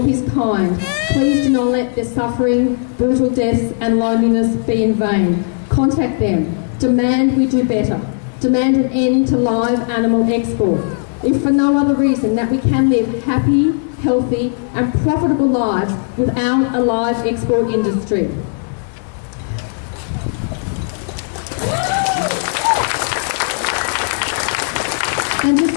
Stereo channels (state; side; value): silent; right; digital silence